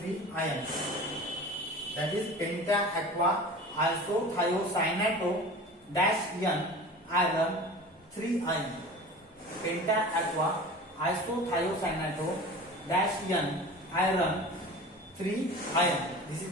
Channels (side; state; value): both; normal; correlation 0.37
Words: ion, that is penta aqua isothiocyanato dash N iron 3 ion. Penta aqua isothiocyanato dash N iron 3 iron. This is